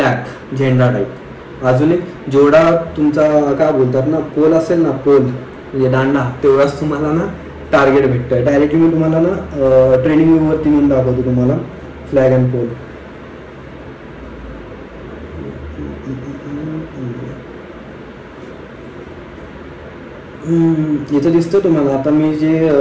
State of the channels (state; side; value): identical; both; correlation 1.00